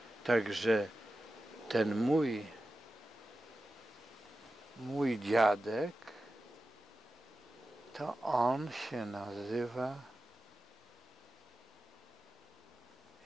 także ten mój dziadek, to on się nazywa,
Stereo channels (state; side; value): normal; both; correlation 0.93